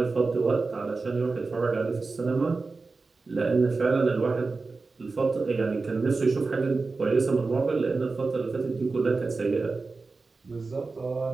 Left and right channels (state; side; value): quieter; left; 4.0 dB